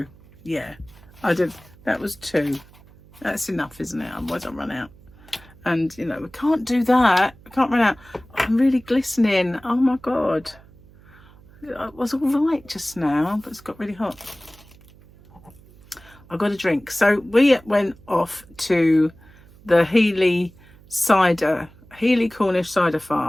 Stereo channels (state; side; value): noise; right; hum, 24 dB below the sound